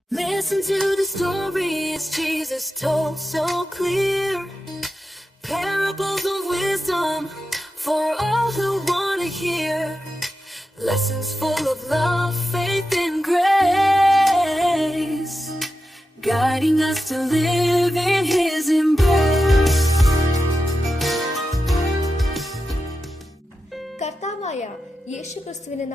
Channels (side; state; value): both; normal; correlation 0.90